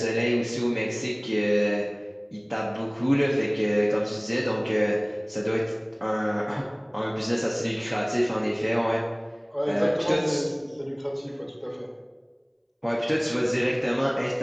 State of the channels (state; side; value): identical; both; correlation 1.00